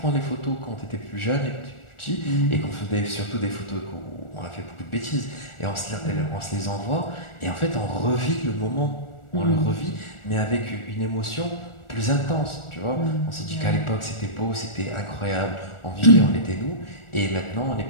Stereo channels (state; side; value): late; right; 1.4 ms